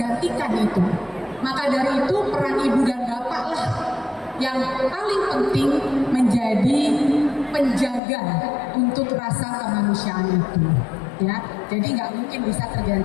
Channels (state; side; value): drops out; right; at 8.0 s